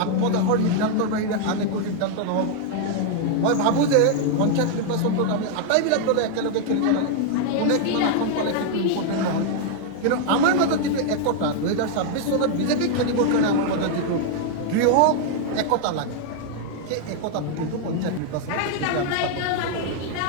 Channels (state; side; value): different; both; correlation 0.00